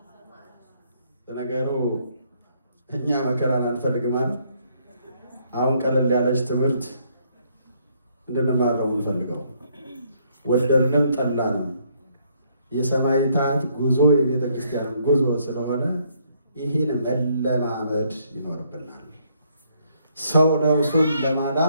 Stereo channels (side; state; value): both; inverted; correlation -0.70